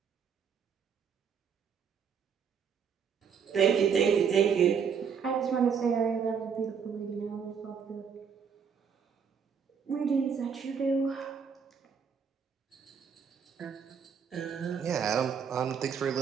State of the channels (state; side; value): quieter; left; 6.8 dB